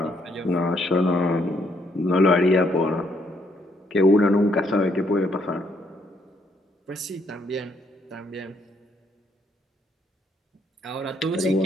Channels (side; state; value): both; normal; correlation 0.71